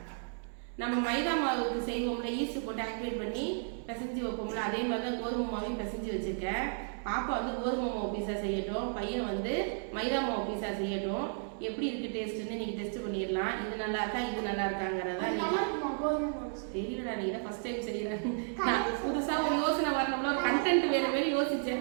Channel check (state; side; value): silent; left; digital silence